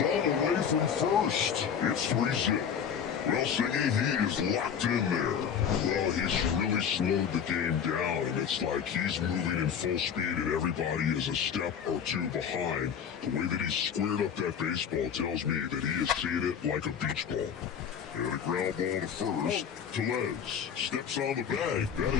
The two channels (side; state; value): right; quieter; 7.7 dB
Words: all the way from first. It's 3-0. Well, Singy, he is locked in there. Well, he's really slowed the game down, and it's like he's moving in full speed and everybody is a step or two behind. The way that he squared up that baseball tells me that he is seeing it like a beach ball. And a ground ball to first. Tellez steps on the bag. That